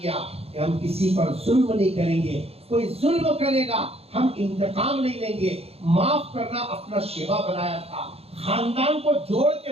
کہ ہم کسی پر ظلم نہیں کریں گے، کوئی ظلم کرے گا ہم انتقام نہیں لیں گے، معاف کرنا اپنا شیوا بنایا تھا، خاندان کو جوڑ کے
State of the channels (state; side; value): late; left; 0.29 ms